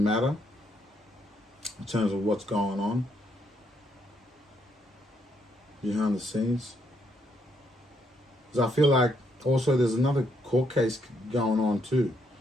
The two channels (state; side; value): normal; both; correlation 0.74